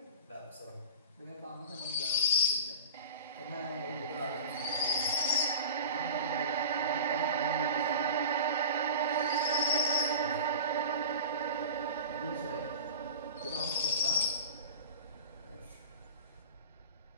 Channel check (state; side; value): inverted; both; correlation -0.35